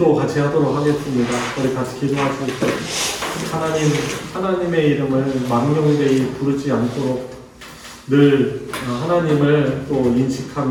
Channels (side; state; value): both; identical; correlation 1.00